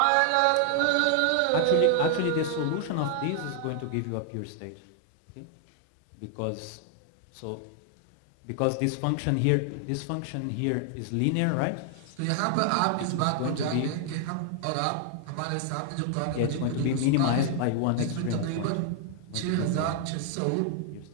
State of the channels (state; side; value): different; both; correlation 0.00